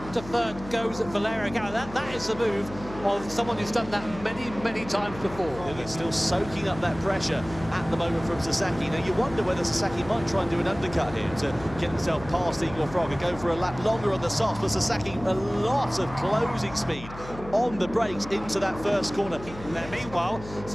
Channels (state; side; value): noise; left; hum, 14 dB below the sound